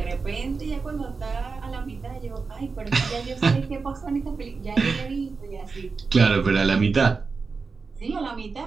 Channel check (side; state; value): left; quieter; 4.6 dB